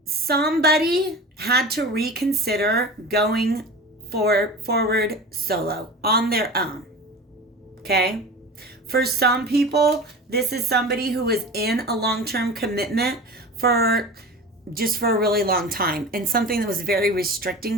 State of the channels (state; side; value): normal; both; correlation 0.33